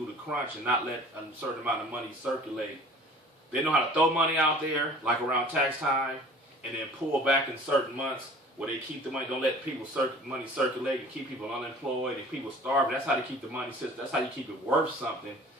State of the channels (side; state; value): both; normal; correlation 0.47